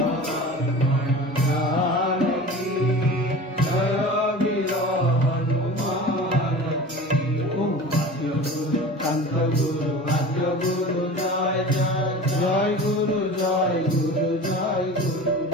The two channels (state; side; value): normal; both; correlation 0.36